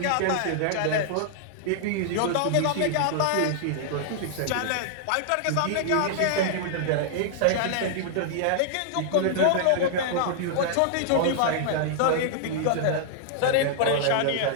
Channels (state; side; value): different; both; correlation -0.01